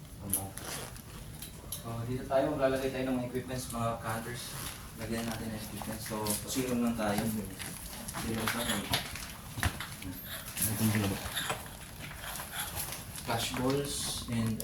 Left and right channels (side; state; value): both; identical; correlation 1.00